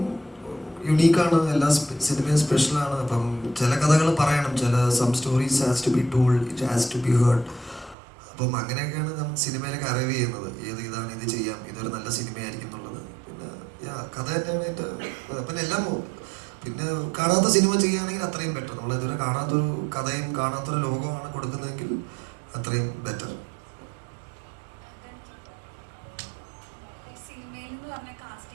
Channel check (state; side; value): drops out; left; at 8.0 s